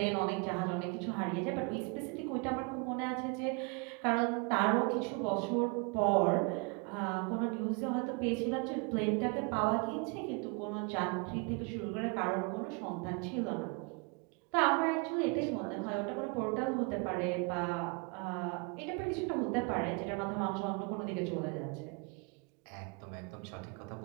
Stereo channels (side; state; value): left; quieter; 31.0 dB